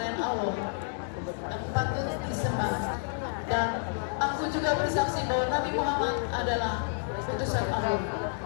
Allah yang patut disembah, dan aku juga bersaksi bahwa Nabi Muhammad adalah utusan Allah.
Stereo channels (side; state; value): right; silent; digital silence